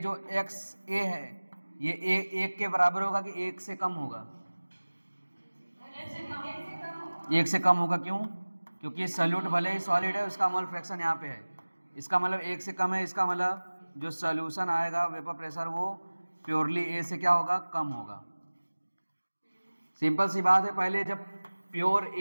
एक्स ए है, ये ए 1 के बराबर होगा कि 1 से कम होगा? 1 से कम होगा। क्यों? क्योंकि सोल्यूट भले ही सॉलिड है, उसका मोल फ्रैक्शन यहाँ पे है, इसका मतलब 1 से कम है। इसका मतलब जो सोल्यूशन आएगा वेपर प्रेशर वो प्योरली ए से क्या होगा? कम होगा। सिंपल सी बात है। पहले जब प्योर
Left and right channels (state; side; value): inverted; both; correlation -1.00